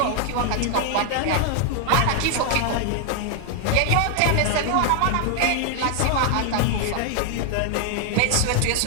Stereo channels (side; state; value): both; different; correlation 0.00